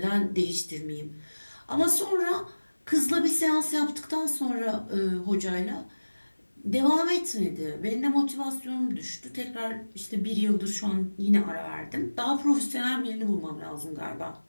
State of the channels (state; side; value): inverted; both; correlation -1.00